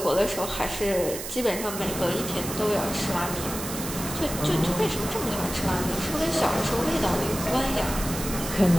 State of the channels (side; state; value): right; noise; hiss, 7 dB below the sound